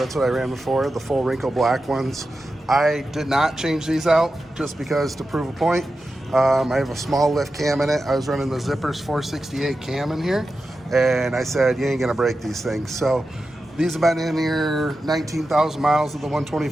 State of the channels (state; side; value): normal; both; correlation 0.91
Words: what I ran before, the full wrinkle black ones. I did not change these out just because to prove a point. I have a small lift cam in it. I was running the Zippers 468 cam in here, and I said, you ain't gonna break these things. So these have been in here 19,000 miles of the